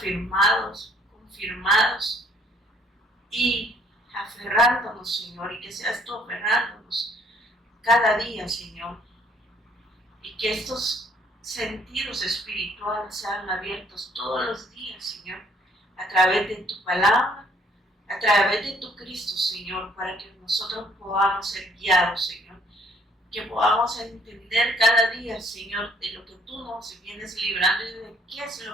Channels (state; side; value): normal; both; correlation 0.62